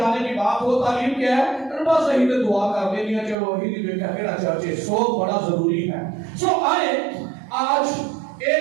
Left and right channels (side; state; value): left; drops out; at 3.4 s